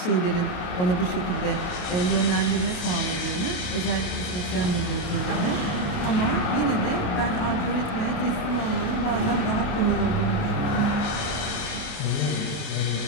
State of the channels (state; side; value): late; right; 29 ms